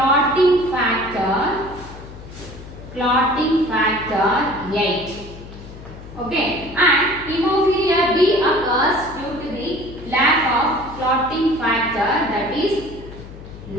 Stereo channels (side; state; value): left; noise; hum, 15 dB below the sound